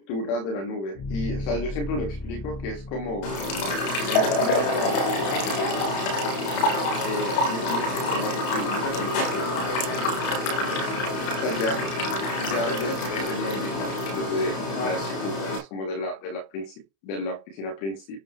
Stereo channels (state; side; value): late; right; 31 ms